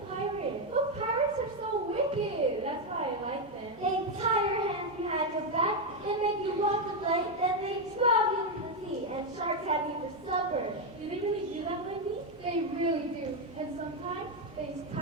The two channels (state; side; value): normal; both; correlation 0.05